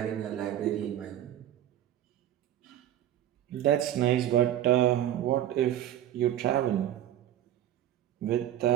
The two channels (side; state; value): left; quieter; 12.0 dB